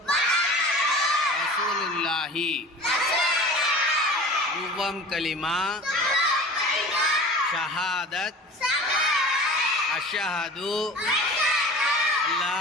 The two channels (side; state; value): both; normal; correlation 0.39